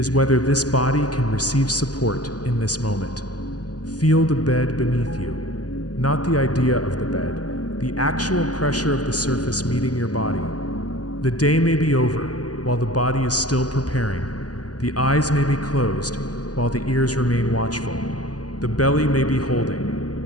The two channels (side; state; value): right; late; 0.68 ms